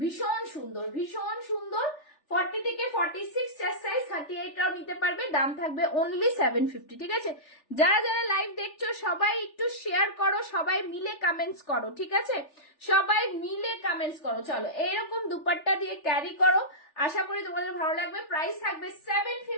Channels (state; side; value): late; right; 3.4 ms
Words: সুন্দর, ভীষণ সুন্দর। 40 থেকে 46 চেস্ট সাইজ, 38টাও নিতে পারবে। দাম থাকবে অনলি 750। ঠিক আছে, যারা যারা লাইভ দেখছো সবাই একটু শেয়ার করো, সবাই মিলে কমেন্টস করো। ঠিক আছে, সবাই মিলে কমেন্টস করো। চলো, এরকম দুপাট্টা দিয়ে ক্যারি করো, আশা করি তোমাদের ভালো লাগবে। প্রাইস থাকবে